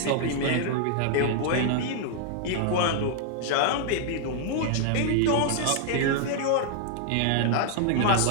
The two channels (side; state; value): both; different; correlation 0.00